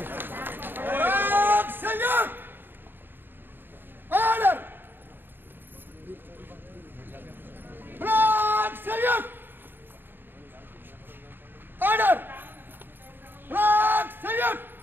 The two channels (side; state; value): left; late; 0.096 ms